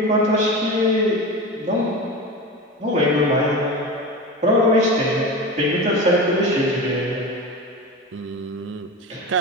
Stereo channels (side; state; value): both; normal; correlation 0.27